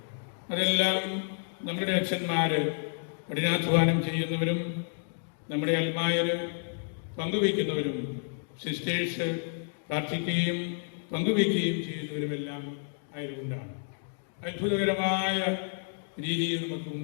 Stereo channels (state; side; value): silent; right; 58 dB below the other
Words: അതെല്ലാം നമ്മുടെ അച്ഛന്മാർ കഠിനാധ്വാനം ചെയ്യുന്നവരും നമ്മുടെ അൽമായർ പങ്കുവയ്ക്കുന്നവരും സിസ്റ്റേഴ്സ് പ്രാർത്ഥിക്കുകയും പങ്കുവയ്ക്കുകയും ചെയ്യുന്നവരുമെല്ലാം ആയതുകൊണ്ടാണ് അത്ഭുതകരമായ രീതിയിൽ നമുക്ക്